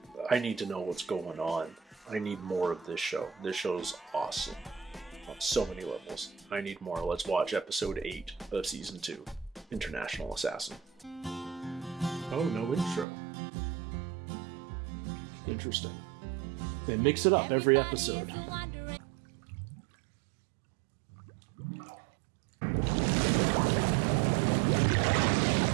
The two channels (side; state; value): left; drops out; at 13.1 s